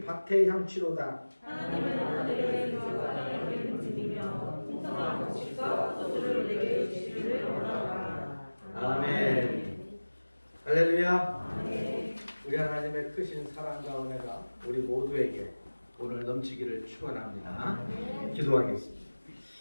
밭의 향취로다. 하나님은 하늘의 빛과 땅의 빛이며 풍성한 곡식과 포도주를 내게 주시기를 원하노라. 아멘. 할렐루야. 아멘. 우리 하나님의 크신 사랑과 은혜가 우리 모두에게 오늘 넘치기를 축원합니다. 기도하겠습니다.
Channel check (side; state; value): both; inverted; correlation -1.00